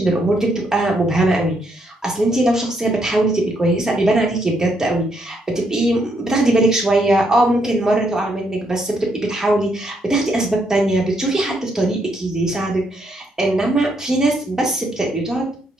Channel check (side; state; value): both; normal; correlation 0.75